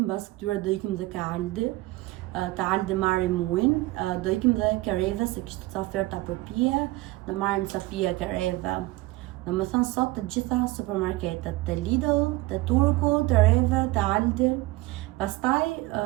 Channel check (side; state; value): left; quieter; 19.7 dB